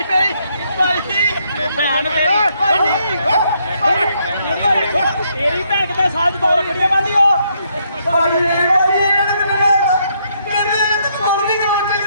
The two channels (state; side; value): inverted; both; correlation -0.73